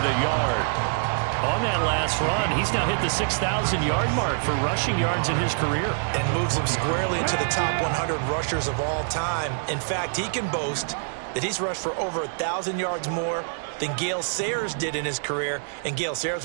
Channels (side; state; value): left; silent; digital silence